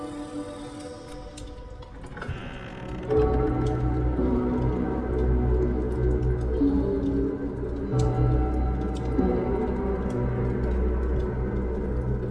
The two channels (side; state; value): both; identical; correlation 1.00